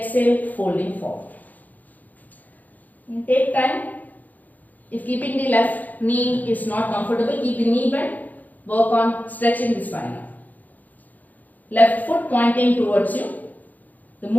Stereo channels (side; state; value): right; late; 0.081 ms